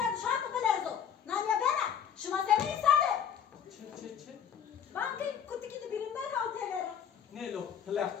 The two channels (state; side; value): quieter; right; 8.2 dB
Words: şartı bilezo. Nanya bana, şuma seni insanı. Çe. Bankı kutu kedi birinden hav temere. Ne lo plak